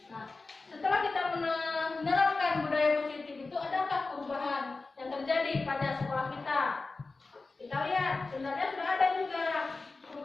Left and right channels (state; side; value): quieter; right; 3.7 dB